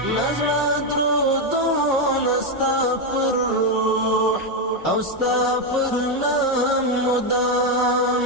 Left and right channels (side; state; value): both; normal; correlation 0.05